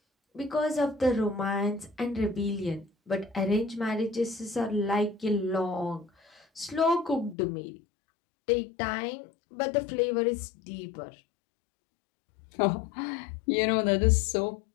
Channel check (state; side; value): drops out; right; at 7.4 s